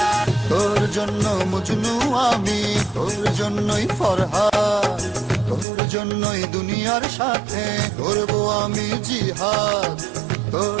তোর জন্য মজনু আমি, তোর জন্যই ফরহাদ, তোর জন্যই দুনিয়ার সাথে করব আমি জিহাদ।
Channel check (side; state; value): left; drops out; at 5.7 s